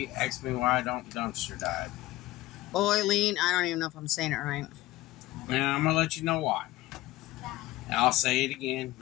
asked me why I don't dumpster dive. Boiling, I don't even know if I'm saying it right. And I'm going to let you know why. And I'll say it again.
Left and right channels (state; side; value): quieter; right; 17.6 dB